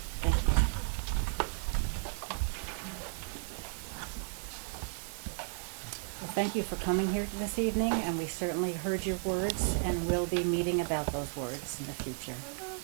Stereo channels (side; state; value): left; silent; 55 dB below the other